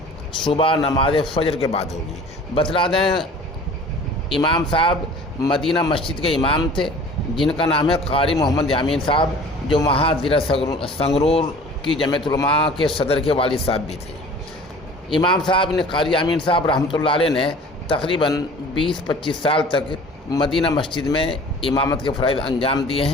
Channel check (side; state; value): both; normal; correlation 0.46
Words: صبح نماز فجر کے بعد ہوگی۔ بتلا دیں، امام صاحب مدینہ مسجد کے امام تھے، جن کا نام ہے قاری محمد یامین صاحب، جو وہاں ضلع سنگرور کی جمعیت علماء کے صدر کے والد صاحب بھی تھے۔ امام صاحب نے، قاری یامین صاحب رحمۃ اللہ علیہ نے تقریباً 20-25 سال تک مدینہ مسجد میں امامت کے فرائض انجام دیے